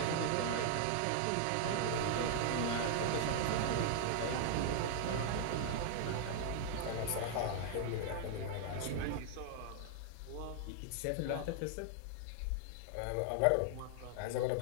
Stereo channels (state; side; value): different; both; correlation 0.00